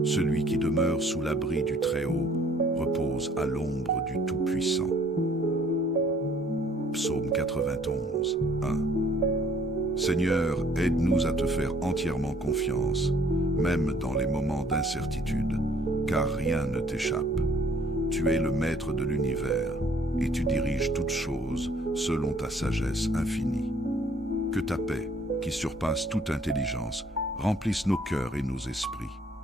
Celui qui demeure sous l'abri du Très-Haut repose à l'ombre du Tout-Puissant. Psaume 91, 1. Seigneur, aide-nous à te faire entièrement confiance, même dans les moments d'incertitude, car rien ne t'échappe. Tu es le maître de l'univers, et tu diriges toutes choses selon ta sagesse infinie. Que ta paix, qui surpasse toute intelligence, remplisse nos cœurs et nos esprits.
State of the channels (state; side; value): normal; both; correlation 0.59